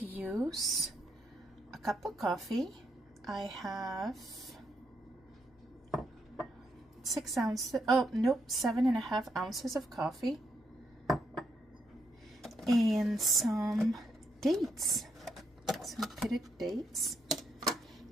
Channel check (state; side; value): normal; both; correlation 0.78